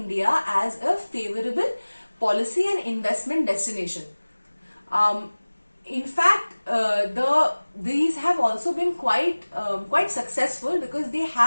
as a favorable policy and investment destination. In fact, these have also been quite successful because they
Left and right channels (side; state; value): both; inverted; correlation -1.00